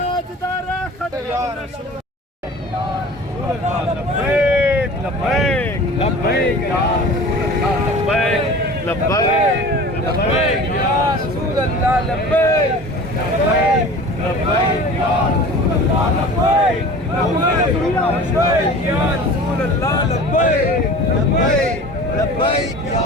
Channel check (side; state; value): both; normal; correlation 0.40